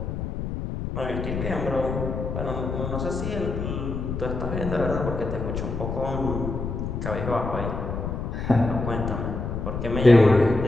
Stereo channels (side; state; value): left; noise; rumble, 4 dB below the sound